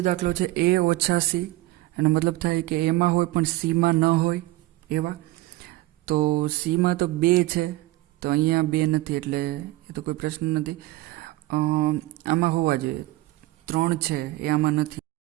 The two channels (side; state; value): left; quieter; 18.3 dB